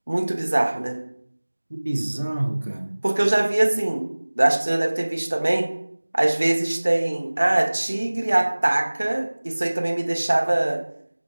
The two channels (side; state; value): both; inverted; correlation -1.00